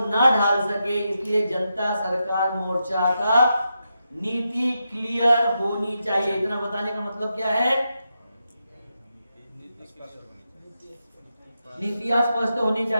ढाल सके, इसलिए जनता सरकार मोर्चा का नीति क्लियर होनी चाहिए। इतना बताने का मतलब क्या है? नीतियां स्पष्ट होनी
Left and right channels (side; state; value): both; inverted; correlation -0.86